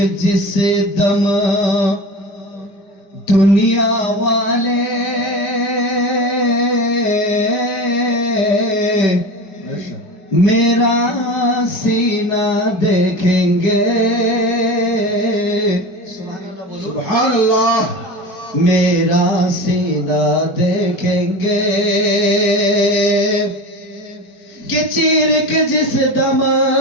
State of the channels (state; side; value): late; right; 5.2 ms